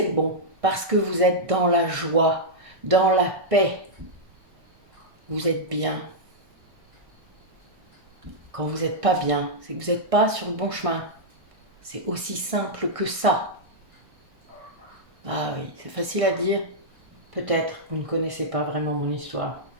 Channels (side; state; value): left; late; 1.6 ms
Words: le bon, parce que vous êtes dans la joie, dans la paix. Vous êtes bien. Quand vous n'êtes pas bien, c'est que vous n'êtes pas sur le bon chemin. C'est aussi simple que ça. Ah oui, c'est facile à dire. Peut-être, vous ne connaissez pas vraiment mon histoire,